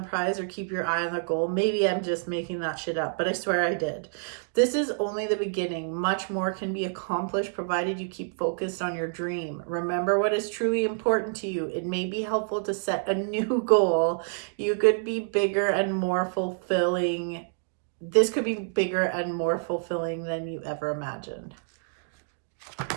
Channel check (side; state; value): left; silent; digital silence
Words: prize or keep your eye on the goal? Maybe I'm just making that shit up, but I swear I did. This is only the beginning. Much more can be accomplished provided you keep focused on your dream. Remember what is truly important to you. It may be helpful to set a new goal. You could be bigger and more fulfilling. This could be bigger and more fulfilling than you ever imagined.